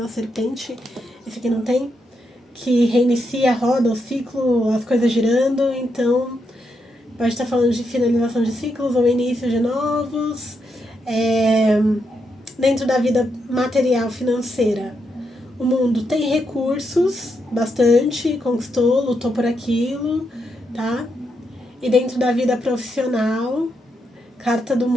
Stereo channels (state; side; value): normal; both; correlation 0.82